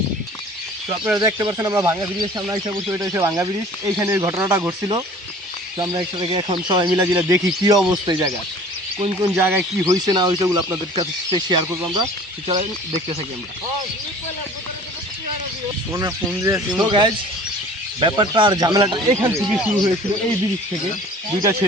তো আপনারা দেখতে পাচ্ছেন আমরা ভাঙ্গা ব্রিজের সামনে এসে বসে, এটা হচ্ছে ভাঙ্গা ব্রিজ। এইখানে ঘটনাটা ঘটছিল। তো আমরা একসাথে এখন সবাই মিলা জিলা দেখি কী অবস্থা এই জায়গায়, কোন কোন জায়গায় কী হয়েছে না হয়েছে ওগুলো আপনাদের কাছে শেয়ার করবো। আমরা চলেন দেখতে থাকি আমরা। তো গাইজ ব্যাপারটা আর ঝামেলাটা এখান থেকে শুরু হয়েছিল, এই ব্রিজ থেকে। দুইটা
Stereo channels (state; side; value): normal; both; correlation 0.47